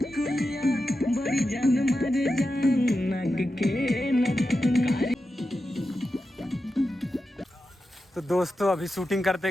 तो दोस्तों अभी शूटिंग करते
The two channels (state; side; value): normal; both; correlation 0.90